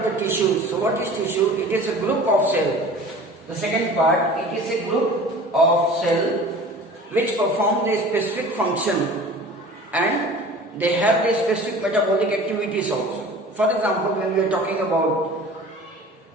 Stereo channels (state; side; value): normal; both; correlation 0.42